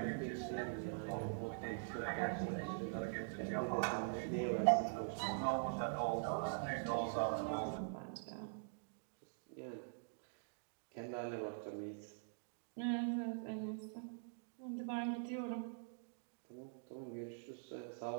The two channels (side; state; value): left; silent; digital silence